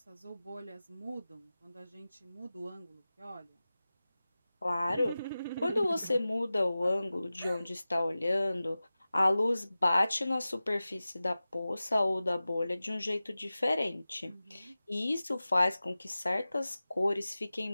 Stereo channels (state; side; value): inverted; both; correlation -0.96